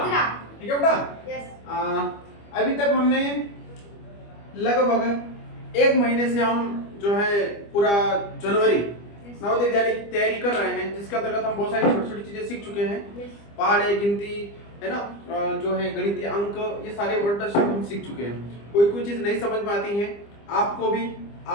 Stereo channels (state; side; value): late; right; 25 ms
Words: ठीक है बेटा? अभी तक हमने लगभग एक महीने से हम जो है पूरा जनवरी नवोदय विद्यालय की तैयारी कर रहे हैं, जिसके अंतर्गत हम बहुत सारी छोटी छोटी चीजें सीख चुके हैं। पहाड़े, गिनती है ना, जो है गणितीय अंक, ये सारे वर्ड हम सीख चुके हैं। कोई चीज नहीं समझ में आती है आपको